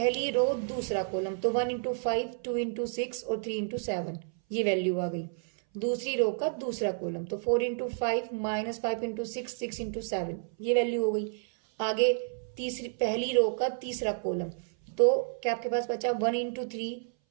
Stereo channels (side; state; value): left; silent; 58 dB below the other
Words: रो दूसरा कॉलम, तो 1 × 5 2 × 6 और 3 × 7 ये वैल्यू आ गई। दूसरी रो का दूसरा कॉलम, तो 4 × 5 -5 × 6 6 × 7 ये वैल्यू हो गई। आगे तीसरी पहली रो का तीसरा कॉलम, तो क्या आपके पास बचा 1 × 3